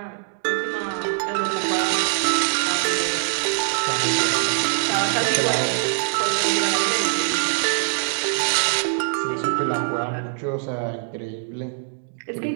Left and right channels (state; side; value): silent; left; digital silence